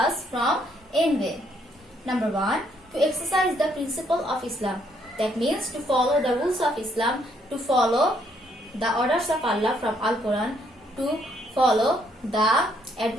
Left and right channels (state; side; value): normal; both; correlation 0.70